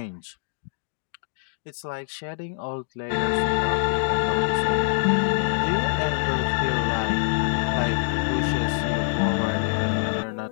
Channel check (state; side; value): silent; right; digital silence